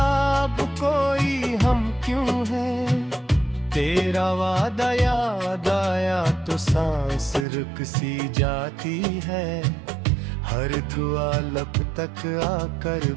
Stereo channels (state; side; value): drops out; left; at 7.5 s